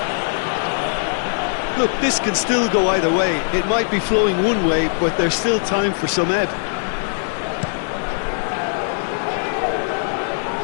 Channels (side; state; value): right; silent; 65 dB below the other